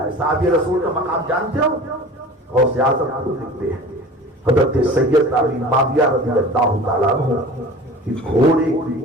ہے. صحابی رسول کا مقام جانتے ہو؟ غوث اعظم خود لکھتے ہیں حضرت سید امین معاویہ رضی اللہ تعالیٰ عنہ کہ گھوڑے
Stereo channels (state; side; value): normal; both; correlation 0.40